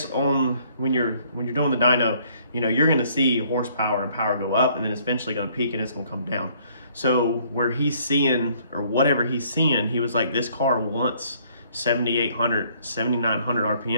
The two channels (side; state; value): both; inverted; correlation -0.62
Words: on when you're doing the dyno, you know, you're going to see horsepower and power go up, and then it's eventually going to peak and it's going to come down. So where he's seeing, or whatever he's seeing, he was like, this car wants 7,800, 7,900